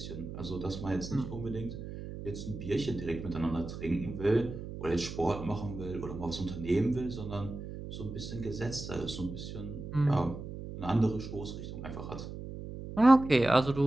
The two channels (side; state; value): right; noise; hum, 9 dB below the sound